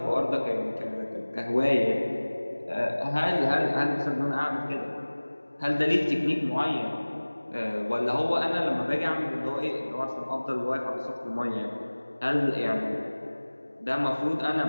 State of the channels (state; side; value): inverted; both; correlation -1.00